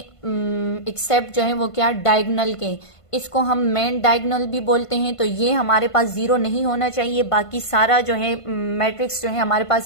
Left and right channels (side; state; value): right; late; 1.5 ms